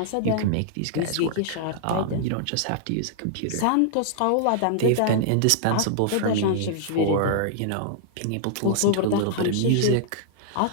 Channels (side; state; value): both; different; correlation -0.01